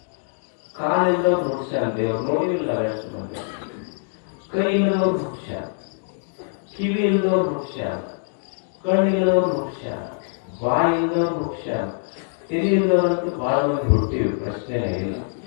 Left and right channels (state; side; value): silent; right; digital silence